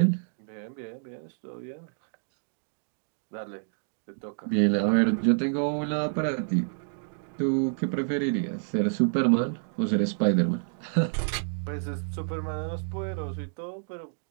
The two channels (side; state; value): left; silent; digital silence